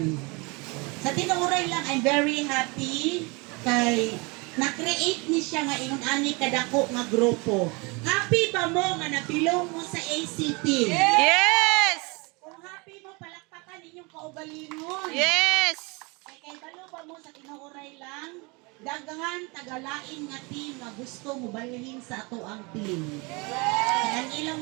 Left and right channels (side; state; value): left; quieter; 28.2 dB